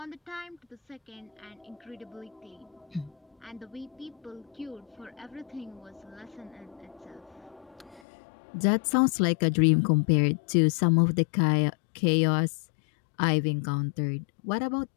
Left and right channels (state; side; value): drops out; right; at 8.0 s